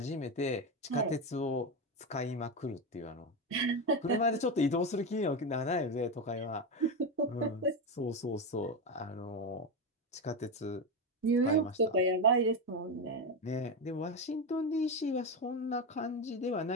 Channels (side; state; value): both; normal; correlation 0.13